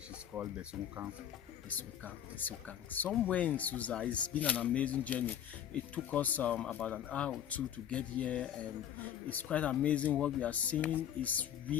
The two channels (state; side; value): quieter; right; 9.9 dB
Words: is called Bessounkang. Bessounkang. Somewhere in Suza. It's been an amazing journey. It took us about an hour or two to get here, and it's quite amazing what we are seeing. It's